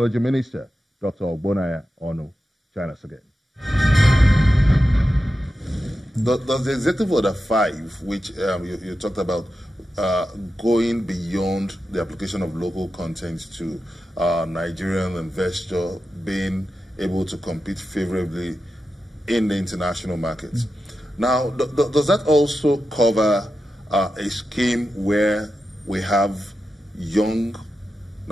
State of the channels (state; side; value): normal; both; correlation 0.91